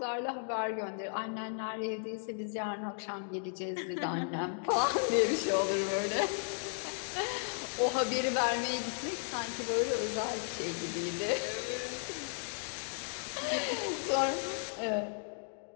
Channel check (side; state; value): right; silent; digital silence